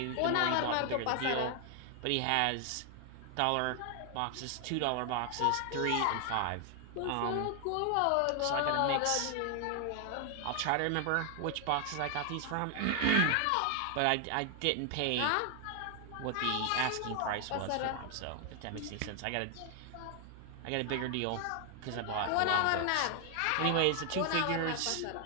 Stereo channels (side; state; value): both; different; correlation 0.00